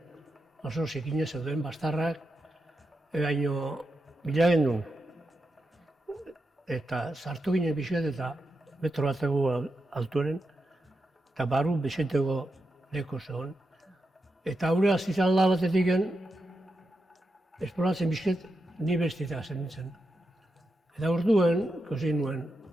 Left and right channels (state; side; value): normal; both; correlation 0.87